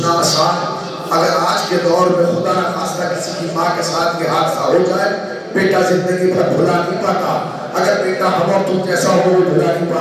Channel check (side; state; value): both; identical; correlation 1.00